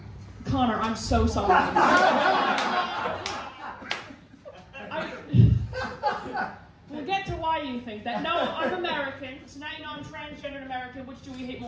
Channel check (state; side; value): identical; both; correlation 1.00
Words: Connor, I'm so sorry. We'll get to why you think that. No, I'm American, so now you know I'm transgendered American. Which do we hate